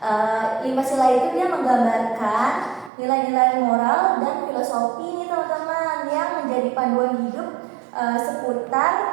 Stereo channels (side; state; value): left; drops out; at 2.9 s